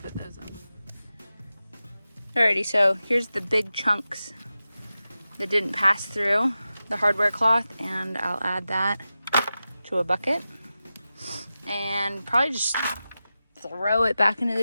those in. Alrighty, so here's the big chunks that didn't pass through the hardware cloth, and I'll add that to a bucket and probably just throw it back into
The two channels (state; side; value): inverted; both; correlation -0.93